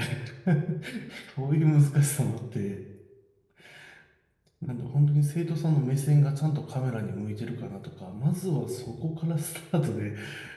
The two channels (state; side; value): identical; both; correlation 1.00